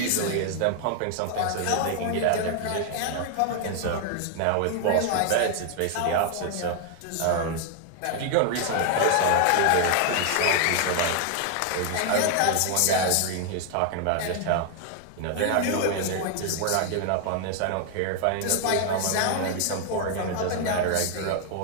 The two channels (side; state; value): both; different; correlation 0.00